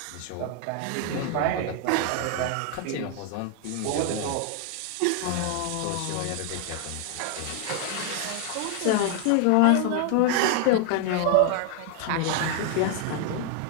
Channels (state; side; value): different; both; correlation 0.00